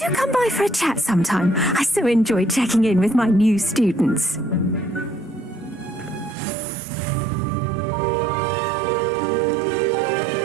come by for a chat sometime. I so enjoy checking in with my new students.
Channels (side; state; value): left; drops out; at 6.4 s